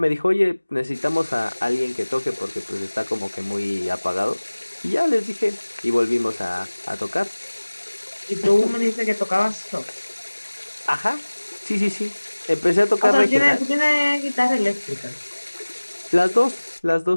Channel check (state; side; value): inverted; both; correlation -1.00